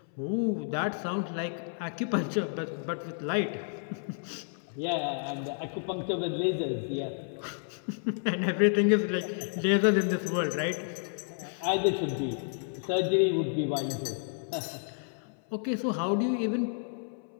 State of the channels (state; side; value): silent; right; 57 dB below the other